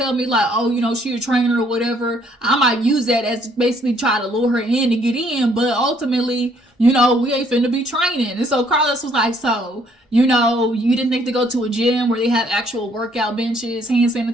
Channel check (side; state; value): both; normal; correlation 0.65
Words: me like, oh, you know, she a trainer or whatever, I might use that as basically try to lure her in to get in. But ultimately, you know, we ain't finna be training. And so Carlos was like, so, you know, you didn't think to go to a gym where they have actual workout benches, hand